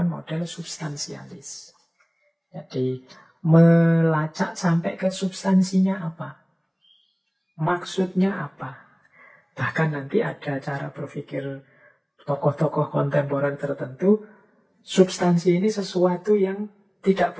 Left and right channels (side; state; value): both; identical; correlation 1.00